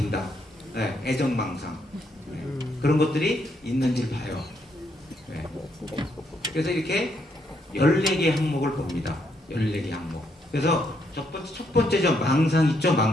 애정망상, 그런 것들이 있는지 봐요. 그래서 이렇게 14개 항목을 봅니다. 14개 항목. 그래서 첫 번째죠. 망상 있죠.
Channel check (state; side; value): normal; both; correlation 0.75